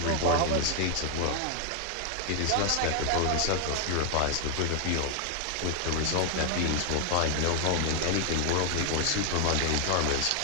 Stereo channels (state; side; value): different; both; correlation 0.00